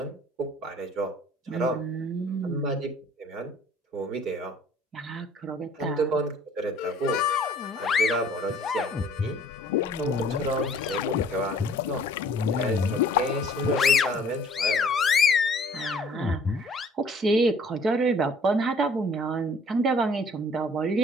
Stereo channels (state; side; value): normal; both; correlation 0.55